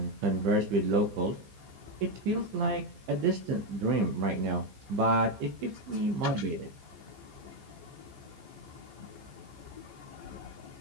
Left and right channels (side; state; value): left; late; 15 ms